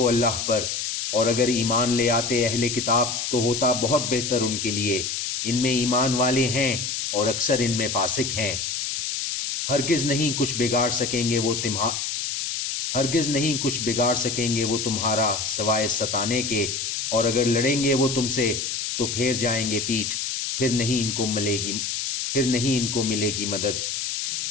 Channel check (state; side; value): noise; left; hiss, 3 dB below the sound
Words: اللہ پر، اور اگر ایمان لے آتے اہل کتاب تو ہوتا بہت بہتر ان کے لیے، ان میں ایمان والے ہیں اور اکثر ان میں فاسق ہیں۔ ہرگز نہیں کچھ بگاڑ سکیں گے وہ تمہارا سوائے ستانے کے، اور اگر لڑیں گے وہ تم سے تو پھیر جائیں گے پیٹھ، پھر نہیں ان کو ملے گی مدد۔